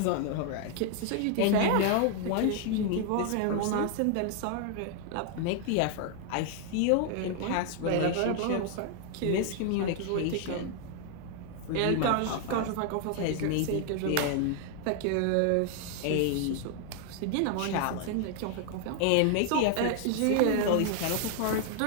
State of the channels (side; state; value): both; different; correlation 0.00